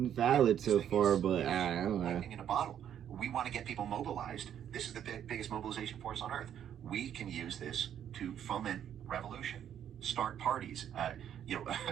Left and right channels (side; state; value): left; quieter; 9.8 dB